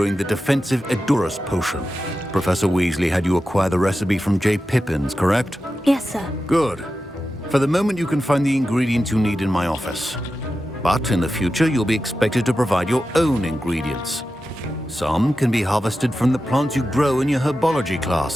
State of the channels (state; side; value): normal; both; correlation 0.92